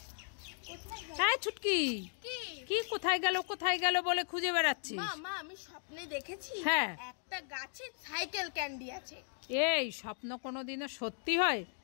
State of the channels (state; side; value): silent; right; 54 dB below the other